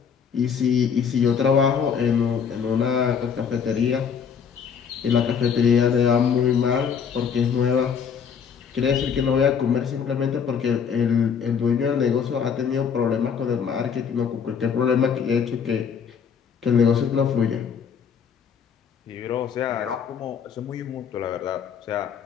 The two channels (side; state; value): right; quieter; 7.0 dB